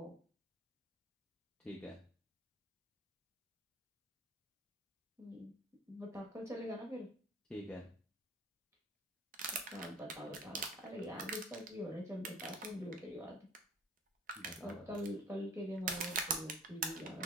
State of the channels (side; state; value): both; normal; correlation 0.46